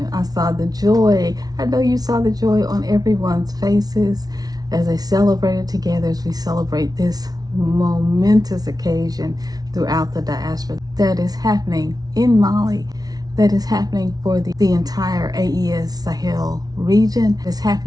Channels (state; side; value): late; left; 0.19 ms